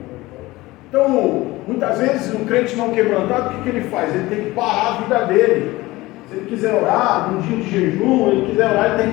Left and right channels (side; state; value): right; quieter; 19.5 dB